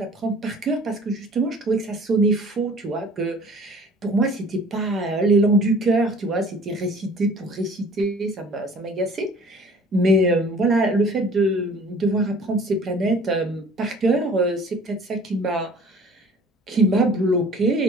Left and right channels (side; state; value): both; normal; correlation 0.49